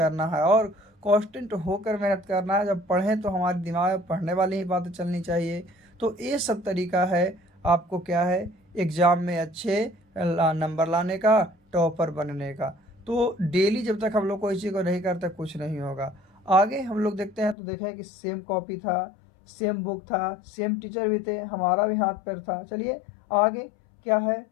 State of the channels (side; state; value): right; drops out; at 17.6 s